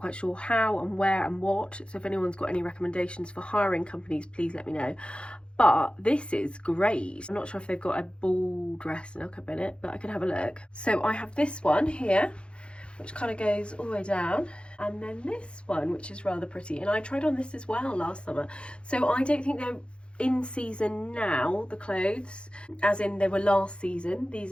sure how and where and what, so if anyone's got any recommendations for hiring companies, please let me know. But this is great. I'm not sure if they've got a ball dress in LK Bennett, but I can have a look. So I have this one here, which kind of goes all the way down. And then this one, which is rather pretty. And I tried on this as well last summer. So I don't think they're in season now, the clothes, as in they were last season,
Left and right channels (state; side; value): late; right; 0.057 ms